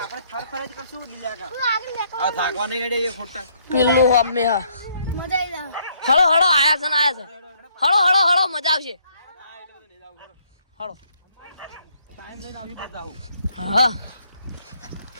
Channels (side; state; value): both; inverted; correlation -0.68